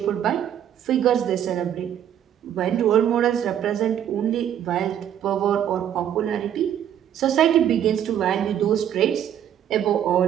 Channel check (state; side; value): quieter; left; 10.1 dB